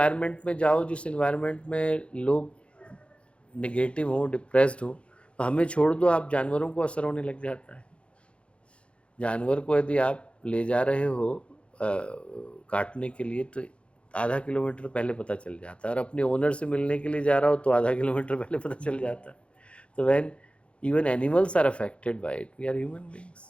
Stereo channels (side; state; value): right; late; 0.060 ms